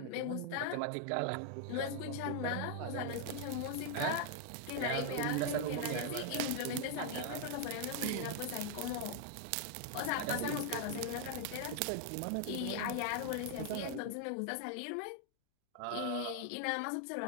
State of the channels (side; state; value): both; different; correlation 0.00